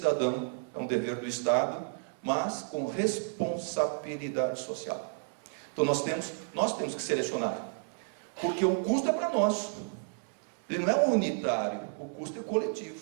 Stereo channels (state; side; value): silent; left; digital silence